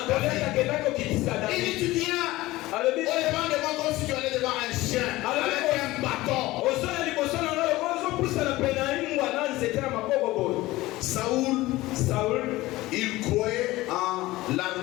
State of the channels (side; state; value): right; quieter; 18.4 dB